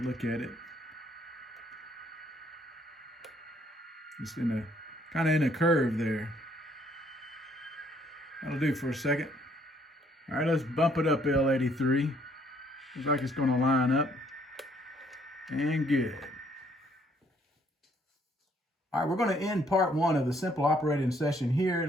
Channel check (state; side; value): normal; both; correlation 0.66